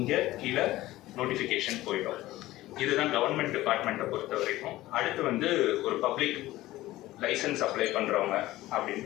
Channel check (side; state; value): right; quieter; 16.8 dB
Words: கீழே நோட்டிஃபிகேஷன் போயிடும். இதுதான் கவர்மெண்ட் டிபார்ட்மெண்ட்டை பொறுத்த வரைக்கும். அடுத்து வந்து ஒரு பப்ளிக் லைசன்ஸ் அப்ளை பண்ணுறவங்க அப்படின்னு